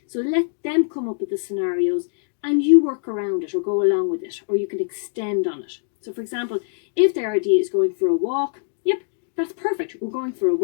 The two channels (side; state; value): right; silent; digital silence